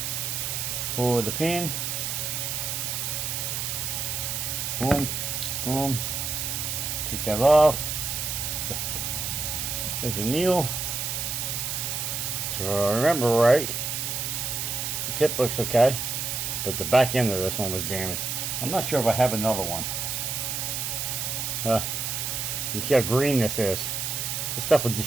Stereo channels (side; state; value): right; noise; hiss, 2 dB below the sound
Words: forward the pin, boom, boom, take that off. There's a needle. So if I remember right, the tip looks okay, but the back end of this one was damaged. I'm not sure if I have another one. You see how green this is. This stuff will